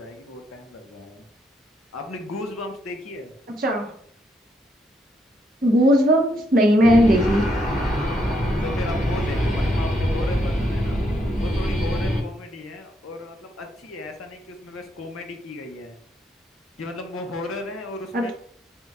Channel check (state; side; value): normal; both; correlation 0.76